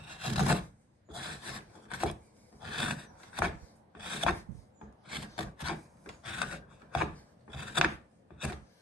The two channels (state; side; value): normal; both; correlation 0.59